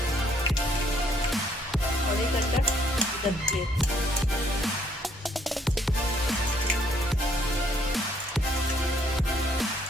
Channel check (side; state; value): both; normal; correlation 0.66